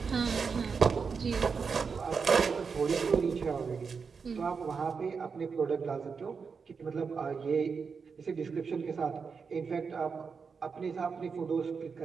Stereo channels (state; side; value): quieter; left; 5.5 dB